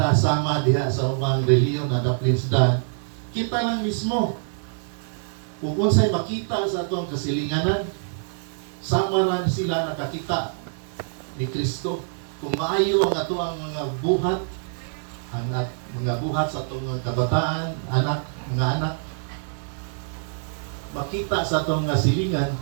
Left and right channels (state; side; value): silent; left; 62 dB below the other